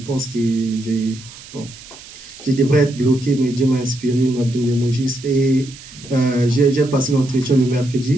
que je devrais être bloqué, mais Dieu m'a inspiré, m'a donné les mots justes. Et j'ai passé l'entretien le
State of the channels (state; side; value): noise; right; hiss, 18 dB below the sound